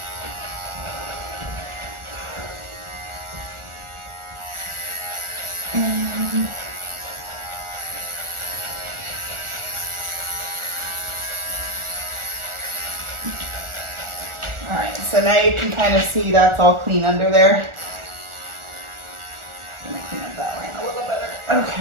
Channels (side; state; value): left; late; 1.4 ms